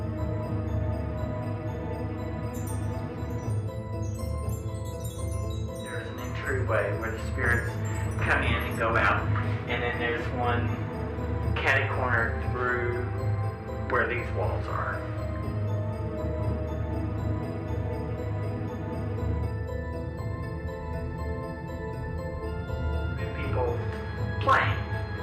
There's an entryway where the spirits come in and go out, and then there's one catty corner through where these walls are. People playing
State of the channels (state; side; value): identical; both; correlation 1.00